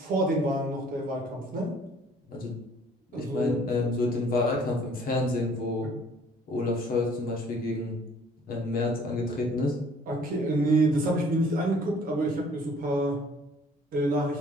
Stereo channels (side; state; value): both; normal; correlation 0.56